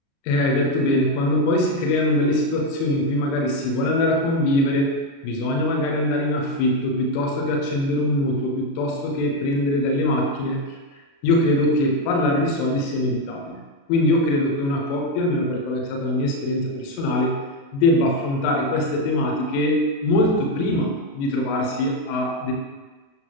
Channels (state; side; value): late; right; 36 ms